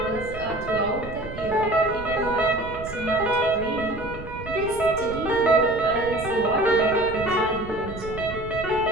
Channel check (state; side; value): noise; right; rumble, 12 dB below the sound